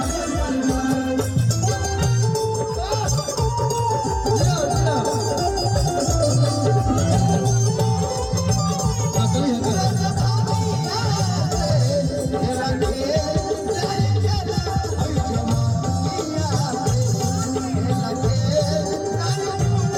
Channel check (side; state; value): both; identical; correlation 1.00